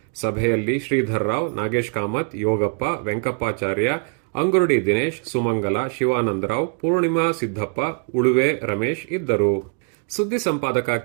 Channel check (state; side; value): quieter; left; 39.6 dB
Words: ಸಭೆಯಲ್ಲಿ ಶ್ರೀಧರ್ ರಾವ್, ನಾಗೇಶ್ ಕಾಮತ್, ಯೋಗಪ್ಪ, ವೆಂಕಪ್ಪಾಚಾರ್ಯ, ಅಂಗುರುಡಿ ದಿನೇಶ್, ಸುಮಂಗಲ, ಶಿವಾನಂದರಾವ್, ಪೂರ್ಣಿಮಾ ಸಿದ್ದಪ್ಪ, ಉಳುವೆ ರಮೇಶ್ ಇದ್ದರು. ಸುದ್ದಿ ಸಂಪಾದಕ